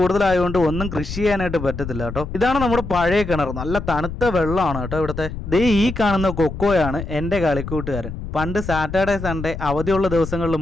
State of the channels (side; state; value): left; noise; rumble, 8 dB below the sound